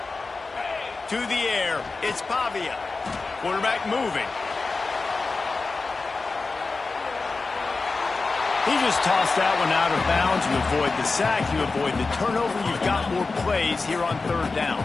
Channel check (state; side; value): quieter; right; 3.9 dB